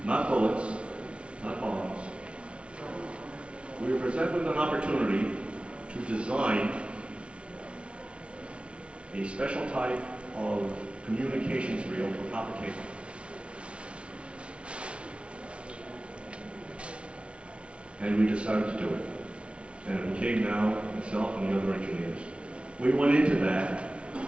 Not bullets, not bombs. We were presented with an opportunity to design a special type of communications reel for copper cable. And we decided to do it. And it became now myself and the other engineers. We went into that,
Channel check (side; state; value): left; late; 0.060 ms